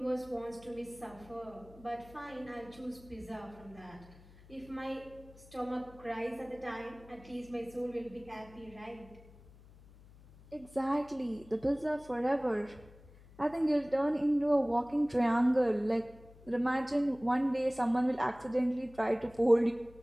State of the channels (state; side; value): noise; left; hum, 22 dB below the sound